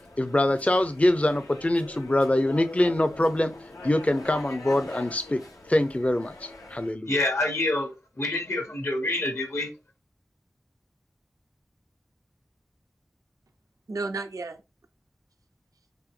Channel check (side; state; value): both; normal; correlation 0.88